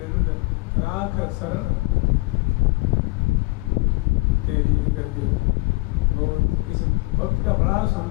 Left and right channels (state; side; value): quieter; right; 24.2 dB